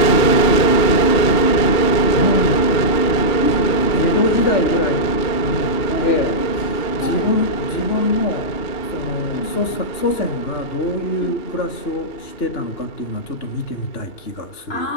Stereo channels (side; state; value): right; late; 2.9 ms